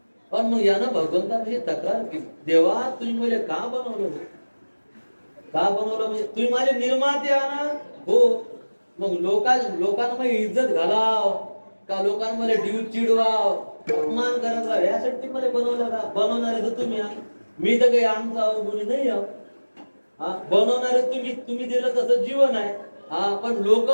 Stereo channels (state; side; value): inverted; both; correlation -1.00